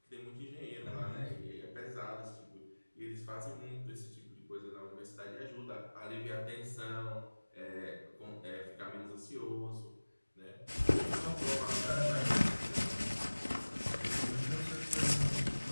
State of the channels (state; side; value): inverted; both; correlation -1.00